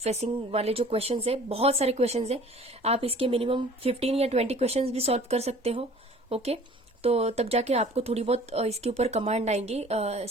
वाले जो क्वेश्चंस है, बहुत सारे क्वेश्चंस है। आप इसके मिनिमम 15 या 20 क्वेश्चंस भी सॉल्व कर सकते हो। ओके, तो तब जाके आपको थोड़ी बहुत इसके ऊपर कमांड आएंगी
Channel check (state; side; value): normal; both; correlation 0.49